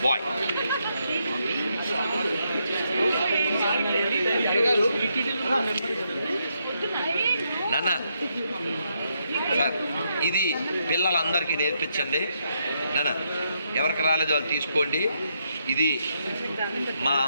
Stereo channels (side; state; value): both; inverted; correlation -0.78